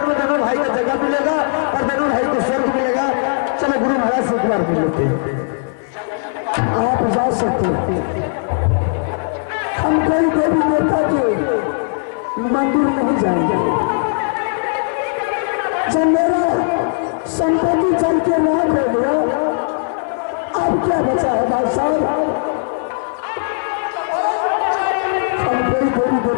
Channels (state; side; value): silent; right; 57 dB below the other